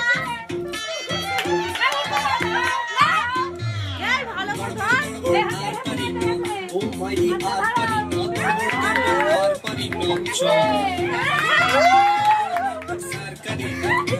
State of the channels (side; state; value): both; identical; correlation 1.00